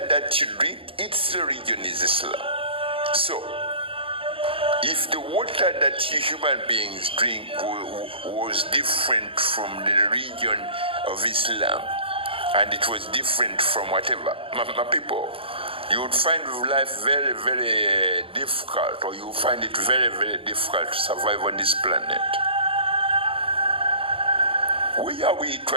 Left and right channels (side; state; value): left; late; 0.26 ms